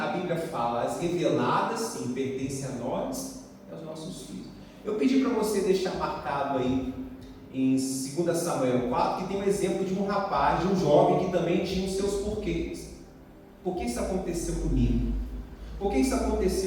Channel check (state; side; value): identical; both; correlation 1.00